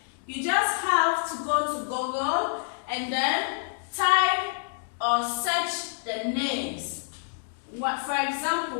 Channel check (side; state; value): right; silent; digital silence